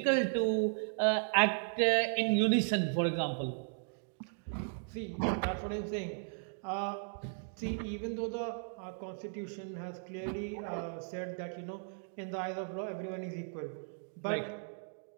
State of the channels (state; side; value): silent; left; digital silence